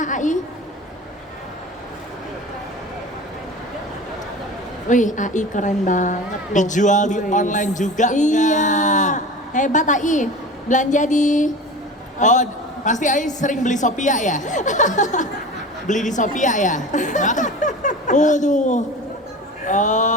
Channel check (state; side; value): normal; both; correlation 0.34